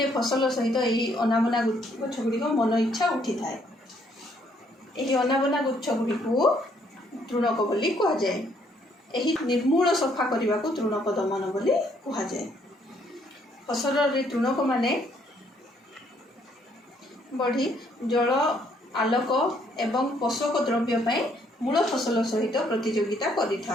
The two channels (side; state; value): both; normal; correlation 0.68